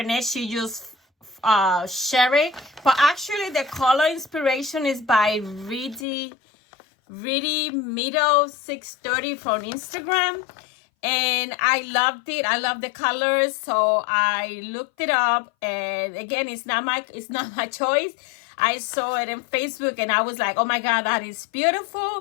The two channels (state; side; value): drops out; right; at 6.1 s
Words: She just share it, but actually the color inspiration is by Really Middle 630 from Instagram, and I loved it. I love the colors, so I looked it up, and again, it's not my choice. I saw it in Facebook, and I was like, oh my god, that is